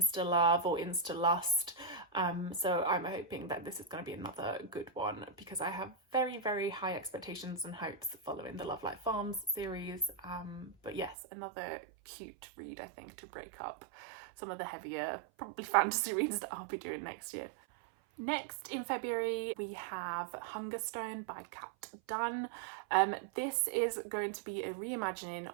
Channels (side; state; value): left; drops out; at 11.2 s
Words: love or insta lust. So I'm hoping that this is going to be another good one, because I have very high expectations and hopes following the Love Like Farms series. But yes, another cute read, I think, to break up some of the heavier, probably fantasy reads that I'll be doing next year. Next in February we have Hungerstone by Kat Dunn. This is going to be a reimagining